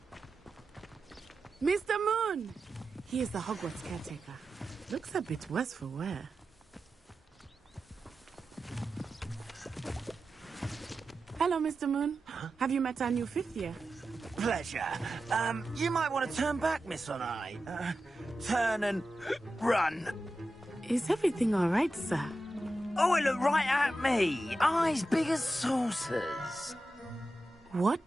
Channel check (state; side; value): normal; both; correlation 0.92